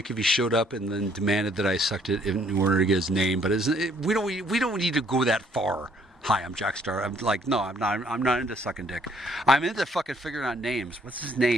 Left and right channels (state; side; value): normal; both; correlation 0.65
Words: if he showed up and then demanded that I sucked it in order to get his name, but we don't need to go that far. Hi, I'm Jackstar. I'm like, no, I'm not into sucking dick. I'm into fucking figuring out names. What's his